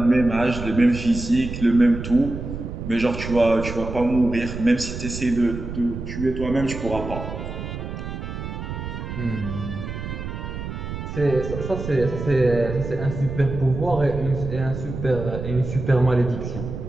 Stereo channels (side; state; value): right; noise; rumble, 7 dB below the sound